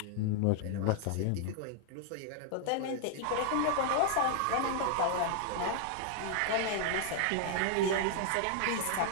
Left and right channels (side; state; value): both; different; correlation 0.00